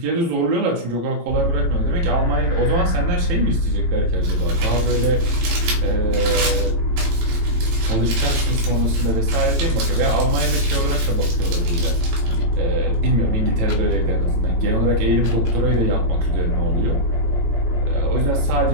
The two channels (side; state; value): left; late; 18 ms